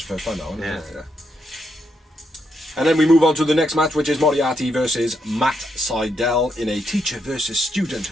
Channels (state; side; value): normal; both; correlation 0.79